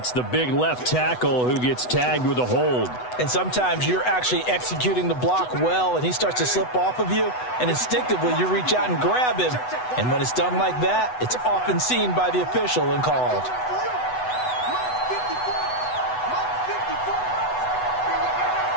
the big left tackle who gets tagged with a hold. And sometimes you're actually executing the block well, and he starts to slip off of you, and instinctively you reach out and grab him. And when it's done like that, it's often seen by the official and called.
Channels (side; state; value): right; late; 8.0 ms